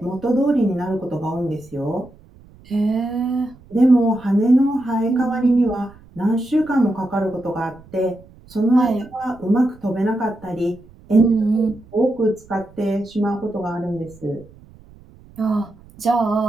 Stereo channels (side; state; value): right; noise; rumble, 24 dB below the sound